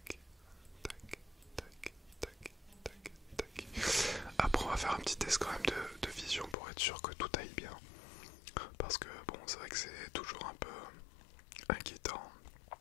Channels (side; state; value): right; drops out; at 6.6 s